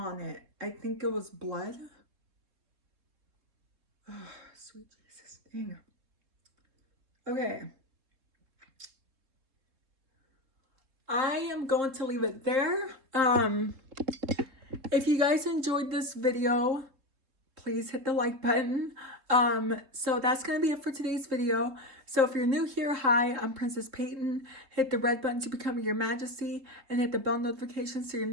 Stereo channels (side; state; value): left; late; 3.7 ms